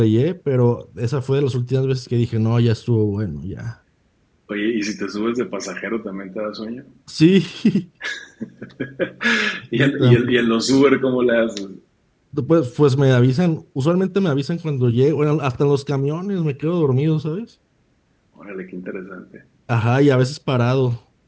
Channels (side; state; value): both; identical; correlation 1.00